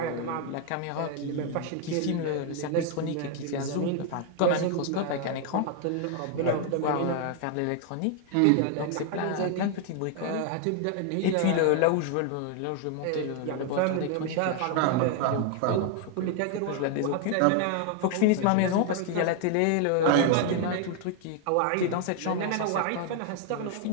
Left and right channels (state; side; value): different; both; correlation 0.00